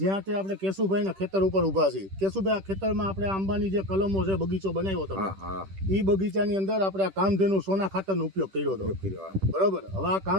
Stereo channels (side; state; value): left; late; 10 ms